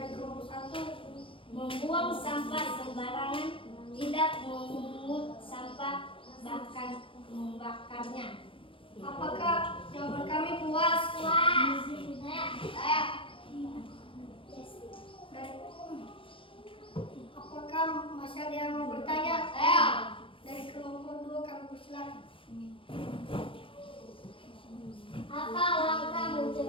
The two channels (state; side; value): late; right; 0.25 ms